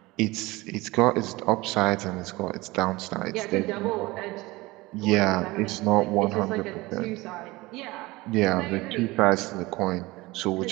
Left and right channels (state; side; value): quieter; left; 21.1 dB